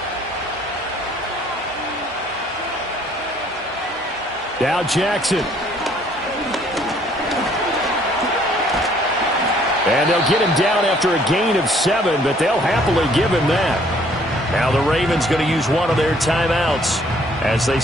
Now Jackson. And they'll get him down after a gain of 7, but they'll happily give him that. Now the Ravens going to use one of their timeouts as they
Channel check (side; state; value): both; normal; correlation 0.61